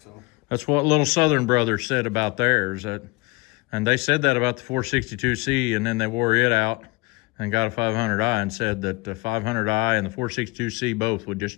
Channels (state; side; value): quieter; right; 25.6 dB